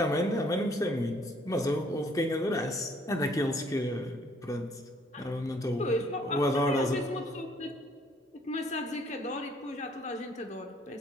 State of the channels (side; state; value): both; normal; correlation 0.62